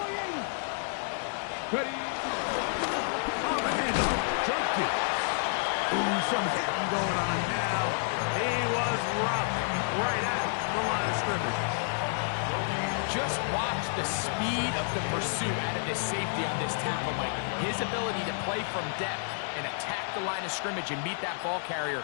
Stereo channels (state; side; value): silent; right; 58 dB below the other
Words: 80. Ready? On the handoff, Junkie. Ooh, some hitting going on now. He was rocked right at the line of scrimmage. Just watch the speed of the pursuit out of this safety on this tackle, Mike. His ability to play from depth and attack the line of scrimmage and meet that ball carrier